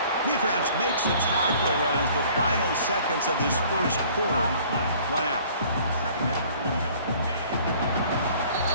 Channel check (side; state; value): both; inverted; correlation -0.53